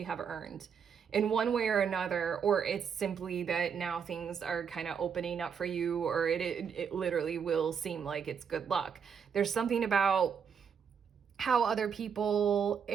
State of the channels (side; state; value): left; quieter; 6.9 dB